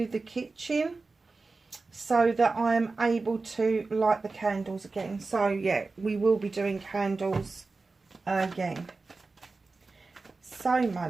the kitchen so that I am able to light the candles again. So yeah, we will be doing candles again. So my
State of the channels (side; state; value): left; quieter; 3.8 dB